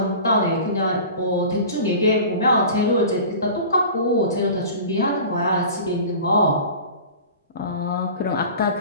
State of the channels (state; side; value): inverted; both; correlation -0.38